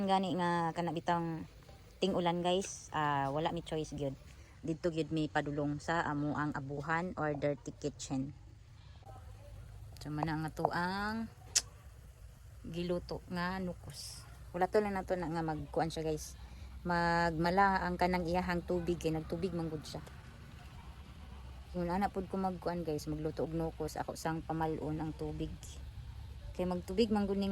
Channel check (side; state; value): both; identical; correlation 1.00